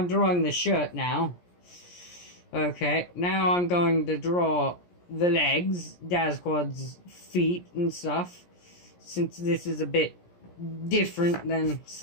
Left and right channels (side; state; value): right; late; 17 ms